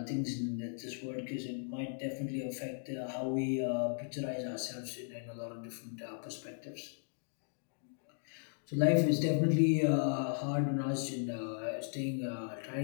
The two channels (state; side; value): silent; right; digital silence